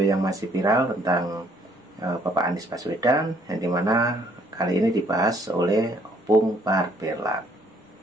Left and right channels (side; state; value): both; normal; correlation 0.64